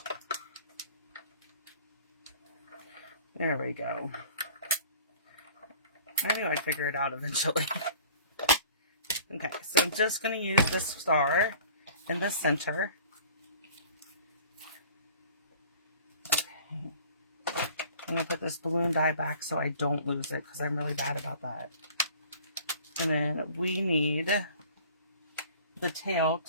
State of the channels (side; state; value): both; inverted; correlation -0.49